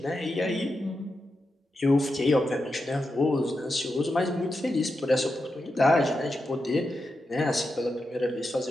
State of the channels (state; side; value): normal; both; correlation 0.88